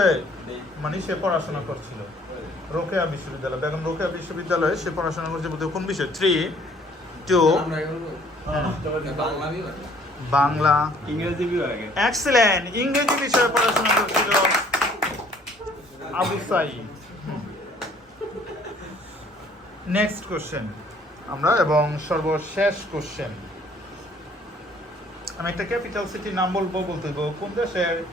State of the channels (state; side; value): normal; both; correlation 0.59